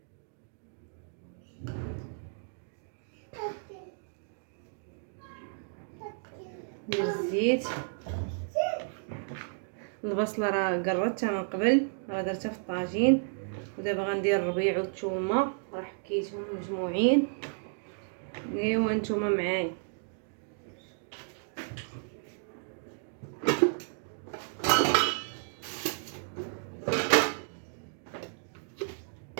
ندير الزيت. البصله راه قرطتها من قبل، راه درتها في الطاجين. ودابا غندير الربيع والثومه، راه حكيتهم مجموعين. ايوا نتوما معايا.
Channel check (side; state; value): left; silent; digital silence